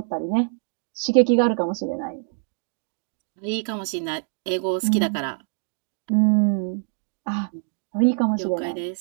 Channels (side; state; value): left; silent; 62 dB below the other